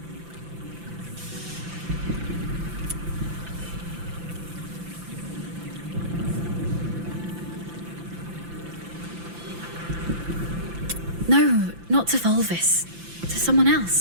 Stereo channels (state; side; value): late; left; 5.9 ms